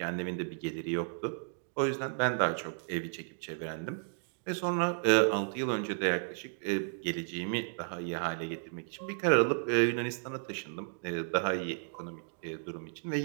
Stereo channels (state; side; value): silent; left; digital silence